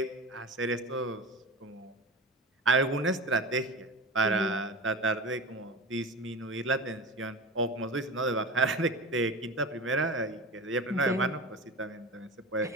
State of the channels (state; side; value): normal; both; correlation 0.31